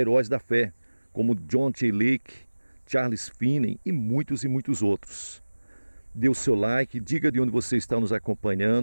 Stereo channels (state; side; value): inverted; both; correlation -1.00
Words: da fé, como John T. Lake, Charles Finney e muitos outros. Dê o seu like, diga de onde você está nos